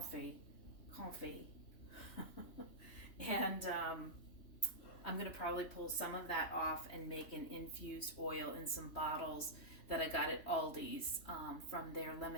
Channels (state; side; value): late; right; 3.1 ms